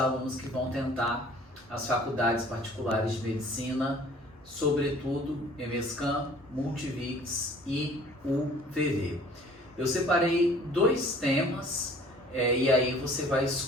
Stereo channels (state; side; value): normal; both; correlation 0.51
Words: que vão tentar as faculdades particulares de medicina, sobretudo EMESCAM, Multivix e UVV. Eu separei dois temas e aí você vai